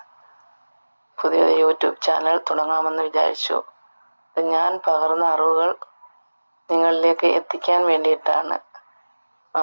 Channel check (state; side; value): inverted; both; correlation -1.00